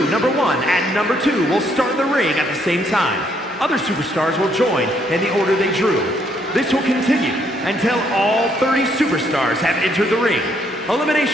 number 1 and number 2 will start in the ring at the same time. Other superstars will join in the order they drew. This will continue until all 30 superstars have entered the ring.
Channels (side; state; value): both; normal; correlation 0.70